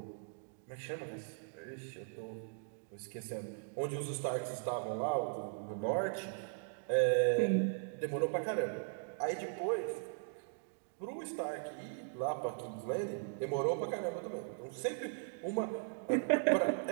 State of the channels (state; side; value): silent; left; digital silence